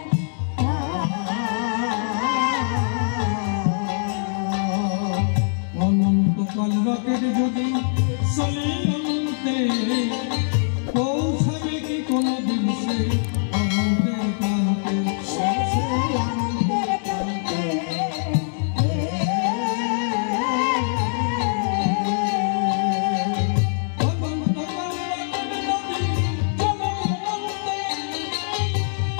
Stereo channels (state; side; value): silent; right; digital silence